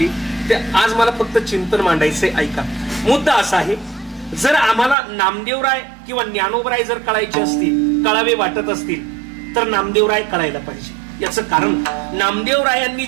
ते आज मला फक्त चिंतन मांडायचंय. ऐका, मुद्दा असा आहे. जर आम्हाला नामदेवराय किंवा ज्ञानोबराय जर कळायचे असतील, कळावे वाटत असतील तर नामदेवराय कळायला पाहिजे. याचं कारण नामदेवरायांनी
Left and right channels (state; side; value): drops out; left; at 5.0 s